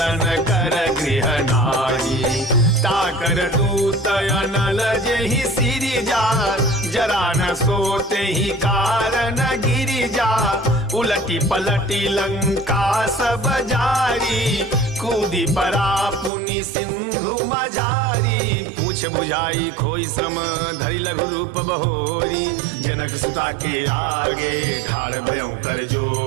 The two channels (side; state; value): left; drops out; at 16.3 s